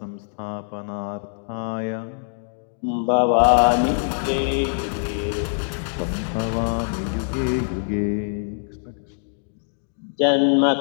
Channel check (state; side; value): silent; right; digital silence